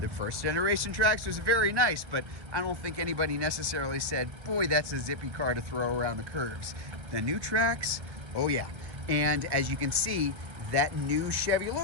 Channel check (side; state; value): left; late; 1.6 ms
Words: first generation Trax was very nice, but I don't think anybody necessarily said, boy, that's a zippy car to throw around the curves. The new Trax, oh yeah. And as you can see, that new Chevy